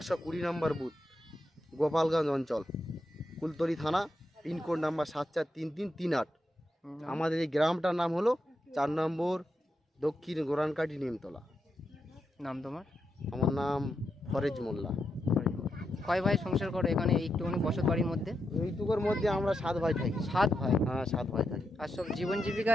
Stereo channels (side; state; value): both; normal; correlation 0.85